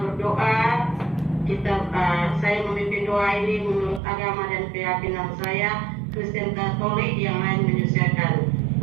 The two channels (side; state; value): left; drops out; at 4.0 s